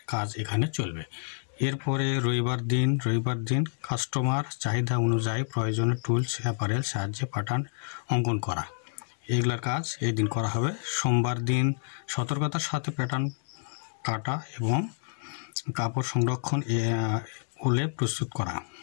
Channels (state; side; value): silent; right; digital silence